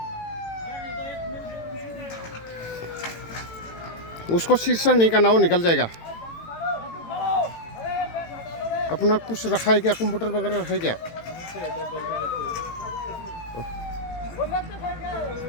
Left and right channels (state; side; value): late; right; 18 ms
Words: शीर्षक नहीं करना, वो निकल जाएगा। अपना कुछ रखा है क्या, कंप्यूटर वगैरह रखा है क्या?